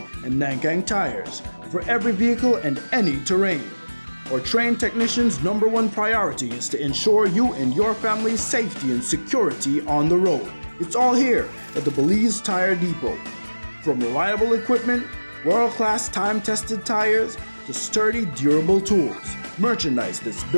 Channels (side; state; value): both; inverted; correlation -1.00